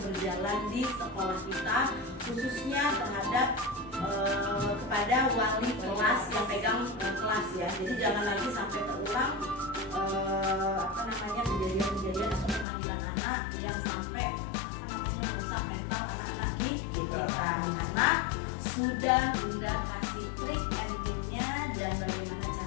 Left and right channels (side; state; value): right; drops out; at 12.7 s